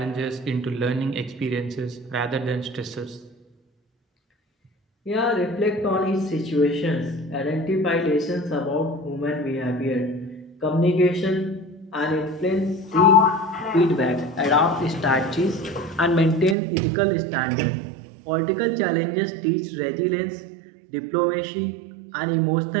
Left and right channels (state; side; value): drops out; left; at 16.6 s